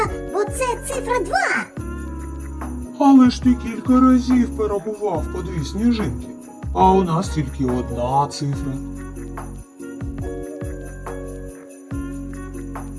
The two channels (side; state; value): both; identical; correlation 1.00